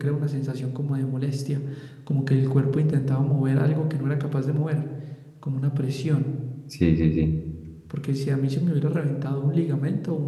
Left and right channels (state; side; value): identical; both; correlation 1.00